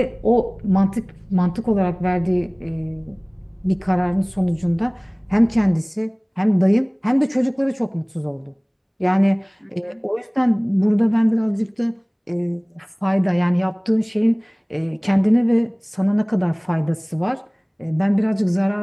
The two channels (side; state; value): both; identical; correlation 1.00